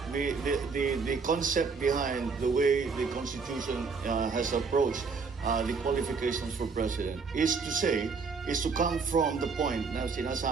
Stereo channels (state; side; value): quieter; left; 4.9 dB